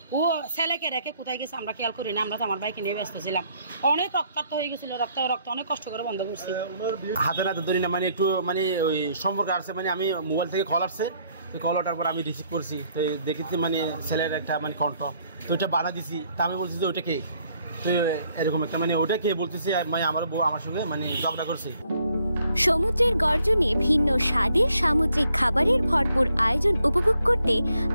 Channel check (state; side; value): inverted; both; correlation -0.69